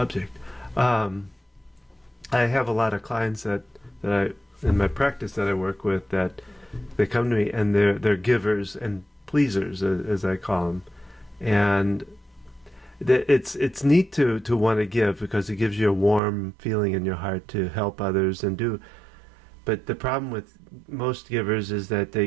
I have a lot of clients that I, in my practice that I work with, that they come to me and they're givers and pleasers, as I call them. And it's neat to want to give because it gives you a warm feeling in your heart to help others and do. But the problem with most givers is that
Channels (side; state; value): left; drops out; at 16.2 s